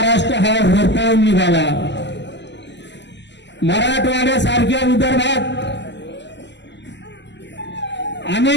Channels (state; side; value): late; right; 0.51 ms